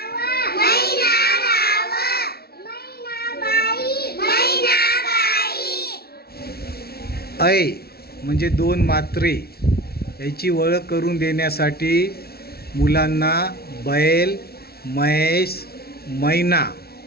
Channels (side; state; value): right; late; 0.45 ms